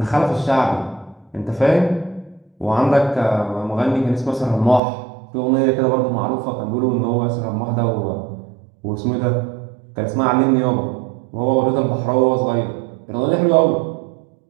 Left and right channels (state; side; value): drops out; left; at 4.8 s